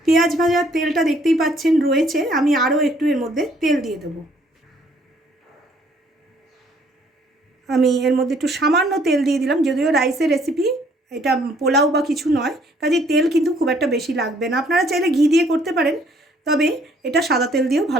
পেঁয়াজ ভাজার তেলটা দেখতেই পাচ্ছেন রয়েছে, আমি আরও একটু এর মধ্যে তেল দিয়ে দেবো। আমি এর মধ্যে একটু সামান্য তেল দিয়ে দিলাম, যদিও রাইসের রেসিপি, এটা পোলাও বা কিছু নয়, কাজেই তেল কিন্তু খুব একটা বেশি লাগবে না। আপনারা চাইলে ঘি দিয়ে করতে পারেন, তবে এটা সাদা তেল দিয়েও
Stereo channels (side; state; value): both; normal; correlation 0.63